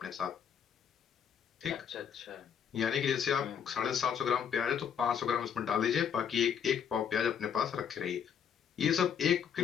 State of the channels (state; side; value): quieter; right; 7.9 dB